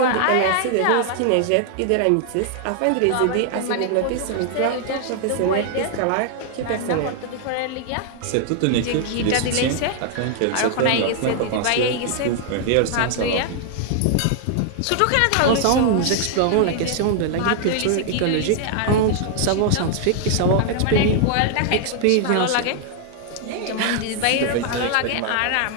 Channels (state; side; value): different; both; correlation 0.00